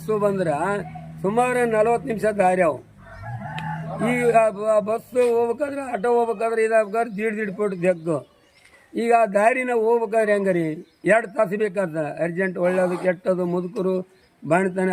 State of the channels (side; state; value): both; identical; correlation 1.00